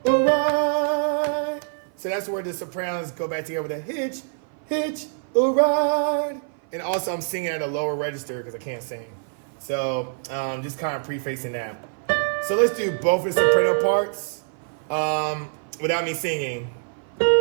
a ride. So that's where the sopranos go back together with a hitch, hitch a ride. And also I'm singing at a lower register because I can't sing. So just kind of prefacing that. So let's do both the soprano parts without me singing.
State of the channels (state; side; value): silent; left; 56 dB below the other